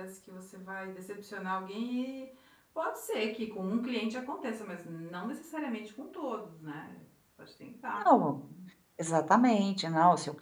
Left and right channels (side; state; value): both; identical; correlation 1.00